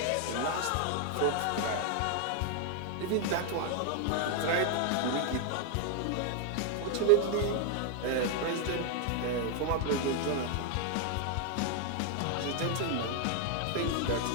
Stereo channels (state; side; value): different; both; correlation 0.00